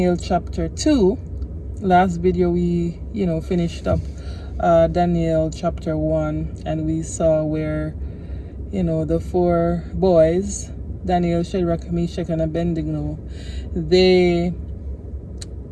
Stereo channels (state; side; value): identical; both; correlation 1.00